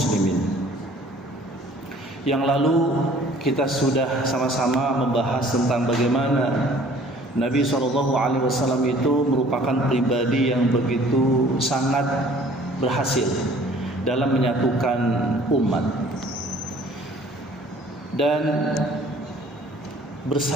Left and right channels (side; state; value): both; normal; correlation 0.53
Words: Yang lalu kita sudah sama-sama membahas tentang bagaimana Nabi SAW itu merupakan pribadi yang begitu sangat berhasil dalam menyatukan umat dan